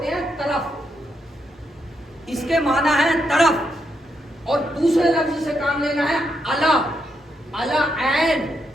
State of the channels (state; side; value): normal; both; correlation 0.80